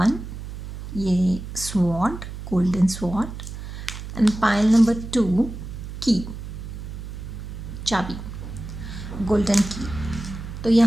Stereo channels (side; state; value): right; noise; hum, 9 dB below the sound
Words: ये sword, golden sword, and pile number 2 की, चाबी, गोल्डन की। तो